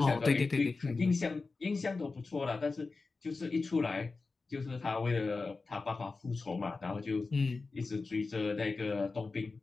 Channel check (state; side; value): quieter; right; 4.0 dB